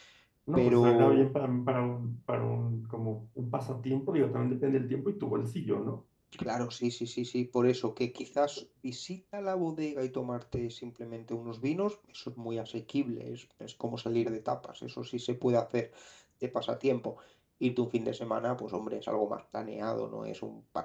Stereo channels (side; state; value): both; identical; correlation 1.00